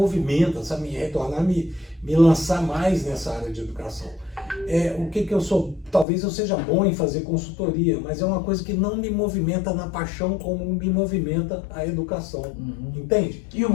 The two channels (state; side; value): drops out; right; at 6.1 s